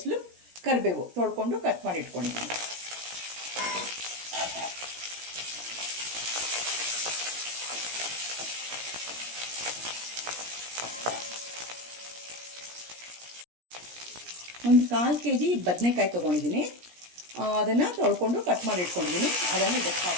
ಕರಿಬೇವು ತೊಳ್ಕೊಂಡು ಕಟ್ ಮಾಡಿ ಇಟ್ಕೊಂಡಿದ್ದೀನಿ. ಒಂದು 1/4 kg ಬದನೆಕಾಯಿ ತೊಗೊಂಡಿದ್ದೀನಿ. ಅದನ್ನು ತೊಳ್ಕೊಂಡು ಕಟ್ ಮಾಡಿ ಇಟ್ಕೊಂಡಿದ್ದೀನಿ. ಅದನ್ನು ಇದಕ್ಕೆ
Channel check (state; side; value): late; left; 17 ms